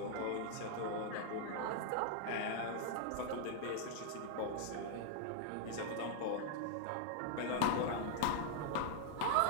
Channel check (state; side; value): different; both; correlation 0.00